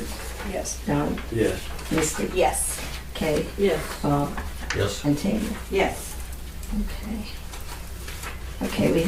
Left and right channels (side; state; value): both; identical; correlation 1.00